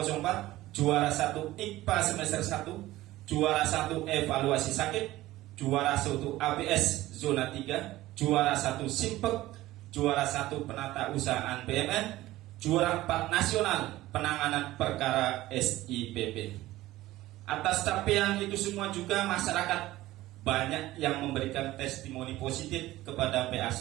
juara 1 IKPA semester 1, juara 1 evaluasi sakit, juara 1 ABS zona 3, juara 1 Simpek, juara 1 penata usahaan BMN, juara 4 nasional penanganan perkara SIPP. Atas capaian itu semua juga masyarakat banyak yang memberikan testimoni positif kepada PA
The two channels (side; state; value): left; quieter; 16.6 dB